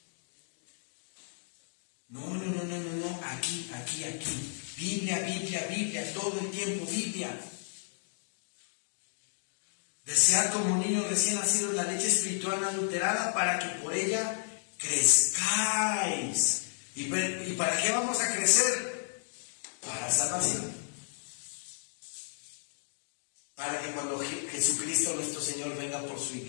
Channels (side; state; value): right; silent; digital silence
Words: No, aquí. Biblia, todo el tiempo Biblia. Desead como niños recién nacidos la leche espiritual no adulterada para que por ella crezcáis. ¿Y para qué vamos a crecer? Para salvación. Para que cuando Jesucristo nuestro Señor venga por su